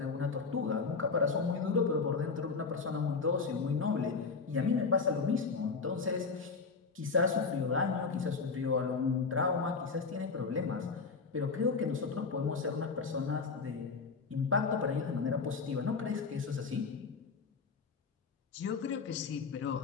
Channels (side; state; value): right; quieter; 4.7 dB